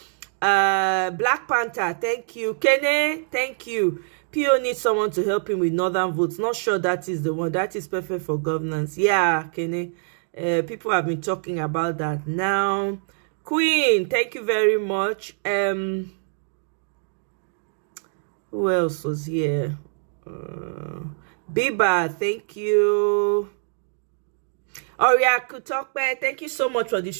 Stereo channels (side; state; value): left; silent; 62 dB below the other